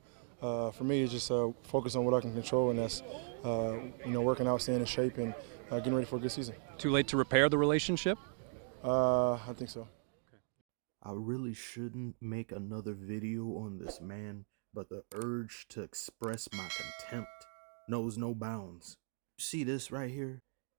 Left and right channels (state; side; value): silent; left; 53 dB below the other